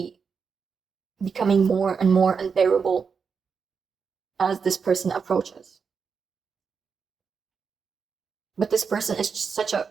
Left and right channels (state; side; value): quieter; left; 5.8 dB